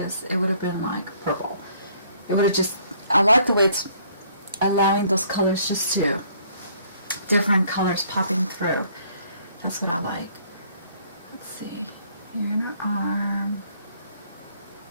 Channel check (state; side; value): inverted; both; correlation -0.62